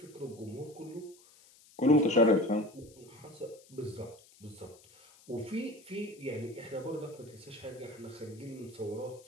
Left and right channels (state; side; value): noise; left; hiss, 25 dB below the sound